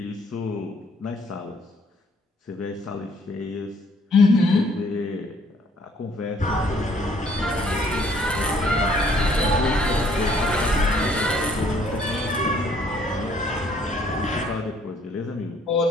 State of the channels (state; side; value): normal; both; correlation 0.63